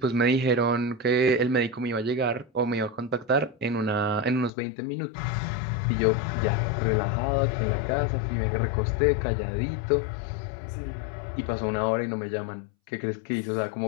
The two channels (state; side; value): drops out; right; at 4.5 s